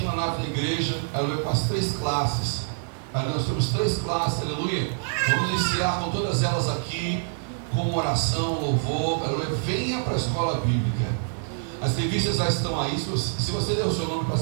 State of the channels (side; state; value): left; silent; 58 dB below the other